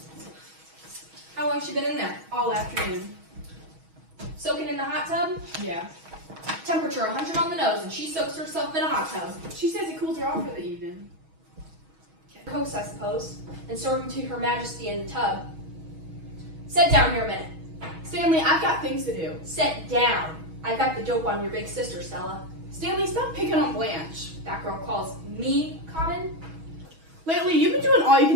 How long she been in there? All afternoon. Soaking in the hot tub? Yeah. Temperature 100 on the nose, and she soaks herself in a hot tub. She says it cools her off for the evening. Coast, I suppose, and serve them to Her Majesty in the tub. Sit down here a minute. Stanley, I've got things to do. Sit down. I got the dope on your big sister, Stella. Stanley, stop picking on Blanche. That girl calls me common. Lately, you've been doing all you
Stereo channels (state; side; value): late; left; 6.2 ms